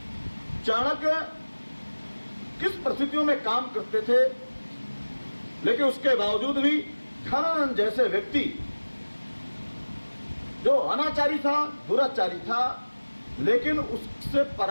चाणक्य किस परिस्थितियों में काम करते थे, लेकिन उसके बावजूद भी धनानंद जैसे व्यक्ति जो अनाचारी था, दुराचारी था, लेकिन उससे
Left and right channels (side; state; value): both; inverted; correlation -1.00